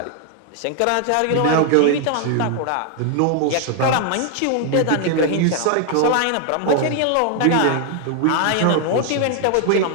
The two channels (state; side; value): different; both; correlation 0.00